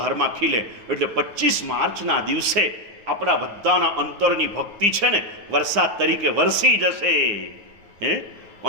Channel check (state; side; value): late; left; 9.7 ms